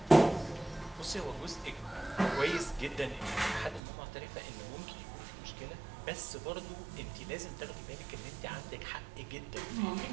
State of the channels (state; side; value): drops out; left; at 3.8 s